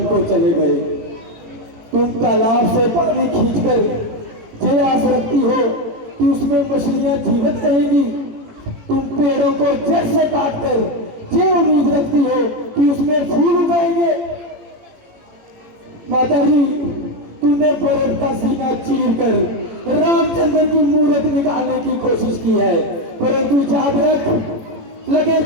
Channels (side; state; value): left; late; 18 ms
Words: को चले गए। तुम तालाब से पानी खींचकर ये आस रखती हो कि उसमें मछलियां जीवित रहेंगी, तुम पेड़ों को जड़ से काटकर ये उम्मीद रखती हो कि उसमें फूल उगाएंगे। माता जी, तुमने भरत का सीना चीर कर रामचंद्र की मूर्त निकालने की कोशिश की है, परंतु याद रख, लगे